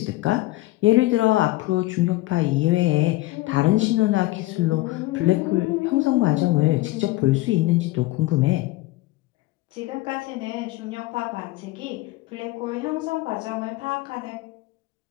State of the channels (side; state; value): right; quieter; 18.7 dB